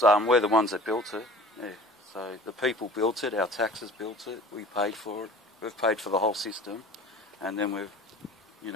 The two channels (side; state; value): both; normal; correlation 0.44